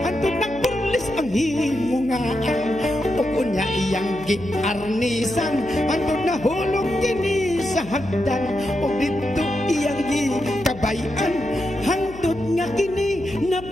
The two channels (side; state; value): left; noise; hum, 16 dB below the sound